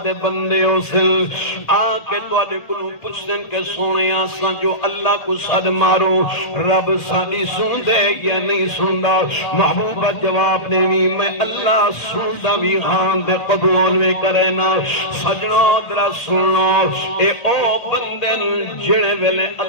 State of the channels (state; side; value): late; right; 1.8 ms